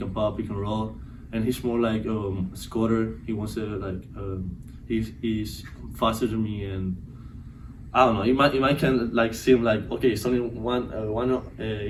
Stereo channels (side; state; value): both; identical; correlation 1.00